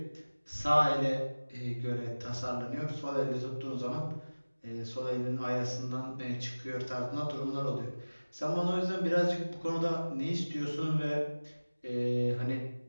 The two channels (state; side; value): inverted; both; correlation -1.00